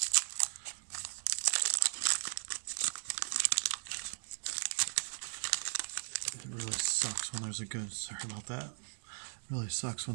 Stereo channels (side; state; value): left; silent; digital silence